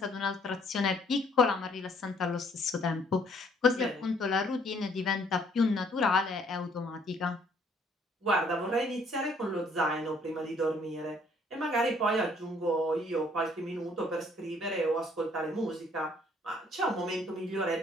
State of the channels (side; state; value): both; normal; correlation 0.63